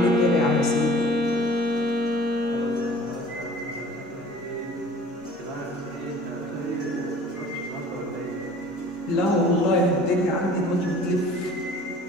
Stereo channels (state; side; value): normal; both; correlation 0.48